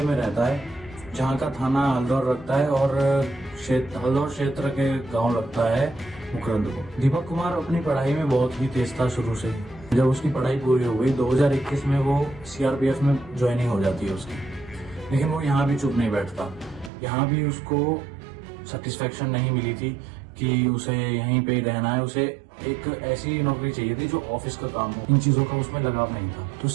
में रहता है, जहाँ का थाना हल्दौर रखता है और हल्दौर क्षेत्र के गांव लगता है मुकरंद को। दीपक कुमार अपनी पढ़ाई में बहुत ही तेज था शुरू से। जब उसकी पढ़ाई पूरी हो गई 2021 में वो सीआरपीएफ में ज्वाइनिंग हो जाती है उसकी। लेकिन वो यहाँ भी चुप नहीं बैठता। यहाँ भी उसको सेटिस्फेक्शन नहीं मिली थी कि उसे यहीं पे रहना है। उसे एक ऐसी नौकरी चाहिए थी जो ऑफिस का काम हो। इन चीजों का उसमें लगाव नहीं था। तो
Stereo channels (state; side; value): drops out; left; at 16.9 s